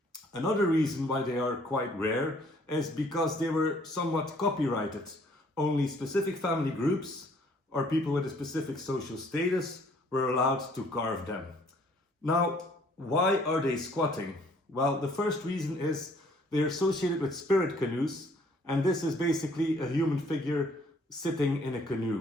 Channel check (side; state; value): both; normal; correlation 0.61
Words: Another reason why they are quite rare is because they were somewhat copyrighted. Only specific family groups or people with a specific social status were allowed to carve them. Now, why are they squatting? Well, the first reason is they're associated with spirit canoes, and this is basically a human figure sitting in a